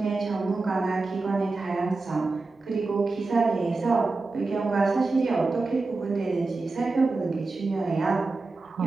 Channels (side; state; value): left; quieter; 3.6 dB